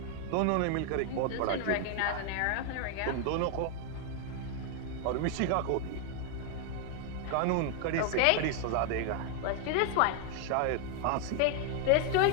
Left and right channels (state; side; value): different; both; correlation 0.00